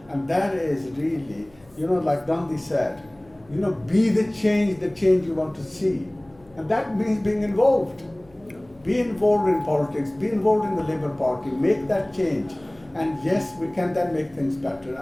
And that is really, like Gandhi said, be the change you want to see. And that means being involved. Be involved in politics, be involved in the Labour Party, make that change. And yes, we can then make things better,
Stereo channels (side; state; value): left; noise; hum, 28 dB below the sound